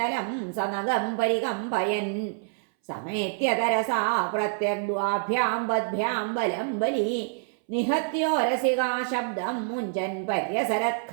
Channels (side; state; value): left; silent; 60 dB below the other